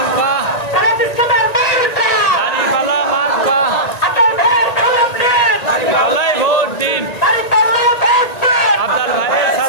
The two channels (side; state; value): right; late; 1.9 ms